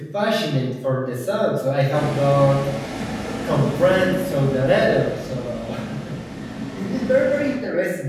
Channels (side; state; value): both; identical; correlation 1.00